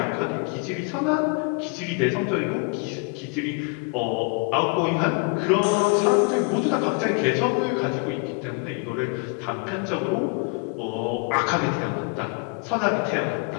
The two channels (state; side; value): quieter; right; 32.4 dB